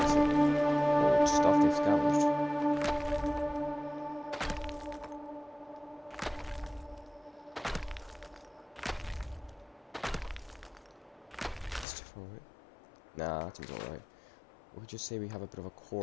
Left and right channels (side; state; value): right; drops out; at 11.9 s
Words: Old stuff they've scavenged. Nah, that seems alright. We could just say we have a bit of a